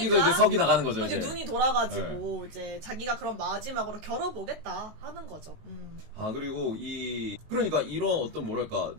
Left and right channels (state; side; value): late; left; 19 ms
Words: 이제 석이 나가는 거죠. 이제 이제. 눈이 돌아가지고 이제 자기가 그럼 마지막으로 겨뤄보겠다 하는 거죠. 그리고 그러니까 이런 어떤 뭐랄까